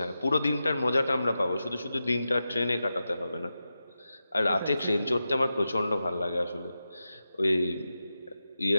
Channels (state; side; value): inverted; both; correlation -0.90